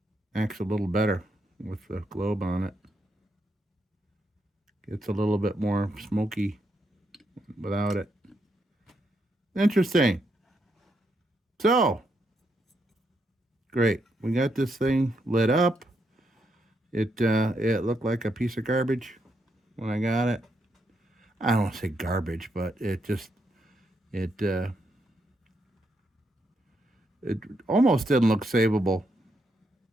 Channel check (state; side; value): normal; both; correlation 0.79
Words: Acts a little better with the globe on it. Gets a little bit more smoky without it. Interesting. So, great. We got this thing lit up. It looked like a piece of garbage when I got it. I don't want to say garbage, but it almost didn't look savable.